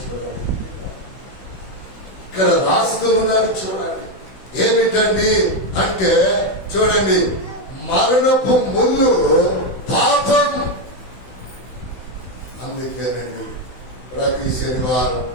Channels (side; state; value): right; late; 16 ms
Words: చూడండి, ఇక్కడ రాస్తూ ఉన్నారు చూడండి. ఏమిటండి అంటే చూడండి, మరణపు ముళ్ళు పాపం. అందుకేనండి ప్రతి శనివారం